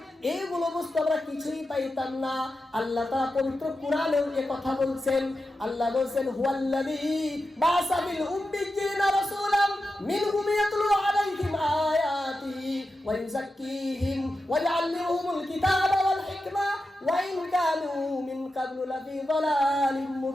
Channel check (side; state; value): both; normal; correlation 0.90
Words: এইগুলো বুঝতে আমরা কিছুই পাইতাম না। আল্লাহ তাআলা পবিত্র কোরআনেও এই কথা বলছেন। আল্লাহ বলছেন হুয়াল্লাযী বা'সা বিল উম্মিয়্যিনা রাসূলাম মিনহুম ইয়াতলু আলাইহিম আয়াতিহি ওয়া ইউযাক্কিহিম ওয়া ইউআল্লিমুহুমুল কিতাবা ওয়াল হিকমা ওয়া ইন কানু মিন ক্বাবলু লাফি যালালিম